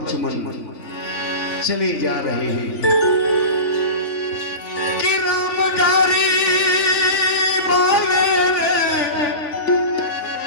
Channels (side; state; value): right; late; 3.4 ms